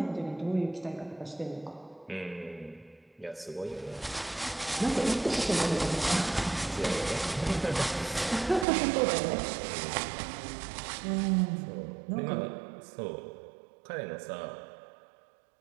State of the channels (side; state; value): left; drops out; at 8.7 s